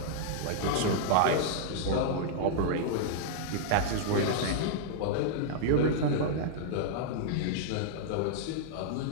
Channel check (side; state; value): both; different; correlation -0.02